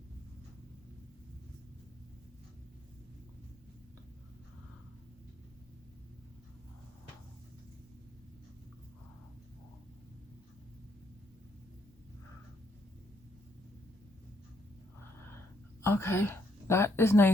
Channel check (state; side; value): normal; both; correlation 0.73